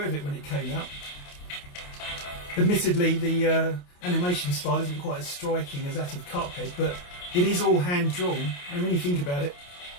of it when it came out. Admittedly, the animation style isn't quite as striking as that of Cuphead, but it is all hand-drawn, and when you think about it,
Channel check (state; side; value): late; right; 28 ms